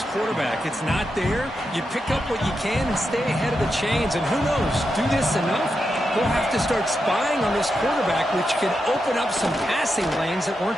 quarterback. It's not there. You pick up what you can and stay ahead of the chains. And who knows, do this enough, we'll have to start spying on this quarterback, which can open up some passing lanes that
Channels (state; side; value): normal; both; correlation 0.86